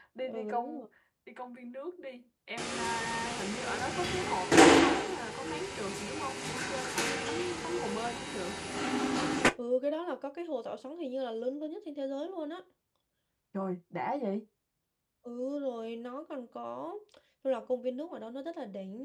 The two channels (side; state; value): both; identical; correlation 1.00